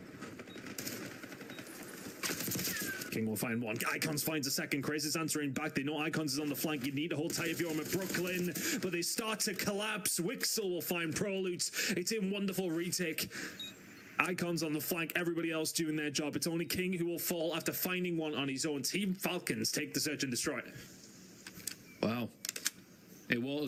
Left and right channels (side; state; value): both; identical; correlation 1.00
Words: King will find one. Icons finds a second. Chris is answering back. They know Icons is on the flank. You need to hold tight if you're on Brooklyn, but they start to collapse. Wixel will find Prolutes. It's in wonderful retake. Icons on the flank, everybody else doing their job. It's only King who will fall after finding one on his own. Team Falcons take the search and destroy. Wow. It